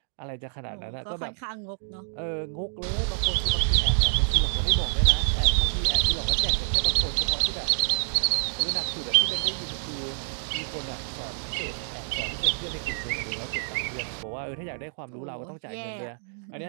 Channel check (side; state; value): left; silent; digital silence